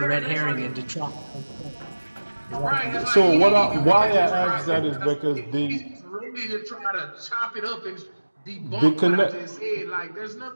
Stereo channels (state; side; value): inverted; both; correlation -1.00